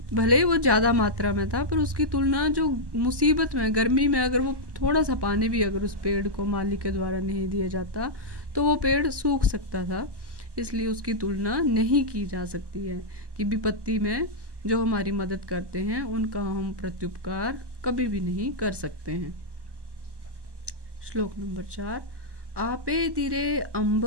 भले ही वो ज़्यादा मात्रा में था, पर उसकी तुलना जो मुसीबत में गर्मी में अगर वो थोड़ा सा पानी भी अगर उस पेड़ को माली के द्वारा नहीं दिया जाता तो वो पेड़ सूख सकता था। इसलिए उसकी तुलना नहीं की जा सकती है कि विपत्ति में जो हमारी मदद करते हैं उनका हम प्रत्युपकार कभी भी नहीं कर सकते हैं। श्लोक नंबर 4। आपे दिरे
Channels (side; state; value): left; late; 1.1 ms